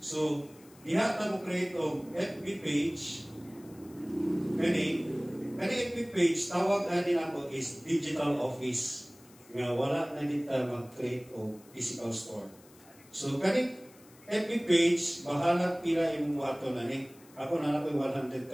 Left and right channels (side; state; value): left; noise; hiss, 25 dB below the sound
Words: So, diha ta mo create og FB page. Kani FB page, tawag din ako is digital office. Nga wala na dito mag-create og physical store. So, kani FB page, bahala pila imong buhaton na ni. Ako na nakoy